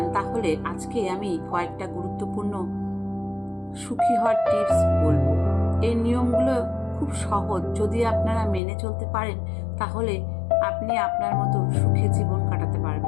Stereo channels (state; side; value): drops out; right; at 8.6 s